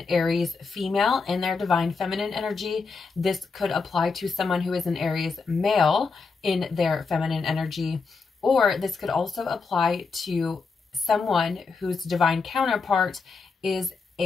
Aries female in their Divine Feminine energy. This could apply to someone who is an Aries male in their feminine energy, or this could also apply to someone whose divine counterpart is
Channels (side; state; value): right; quieter; 4.7 dB